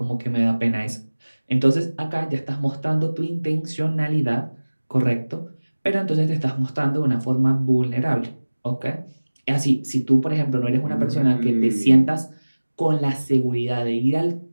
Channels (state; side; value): inverted; both; correlation -1.00